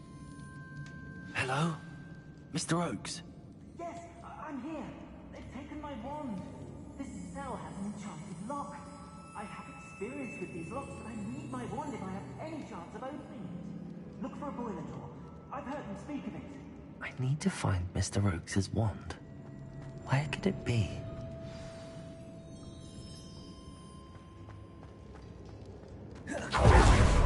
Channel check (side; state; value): both; identical; correlation 1.00